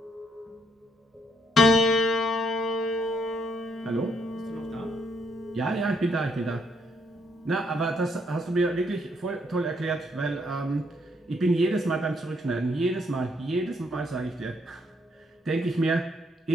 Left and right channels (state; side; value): normal; both; correlation 0.72